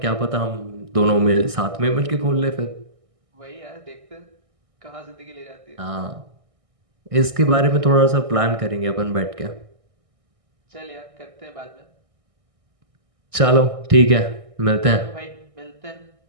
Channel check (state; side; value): late; left; 1.6 ms